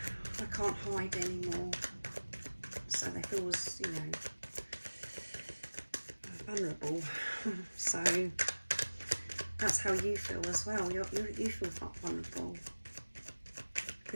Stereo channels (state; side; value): inverted; both; correlation -1.00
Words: I can't hide anymore. So they feel, vulnerable. So that's how you feel as well. You feel vulnerable,